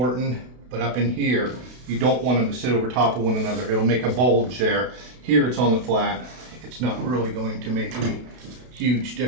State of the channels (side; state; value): left; late; 32 ms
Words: but up in here you don't want them to sit over top of one another. It'll make a bulge there. Here it's on the flat. It's not really going to make any huge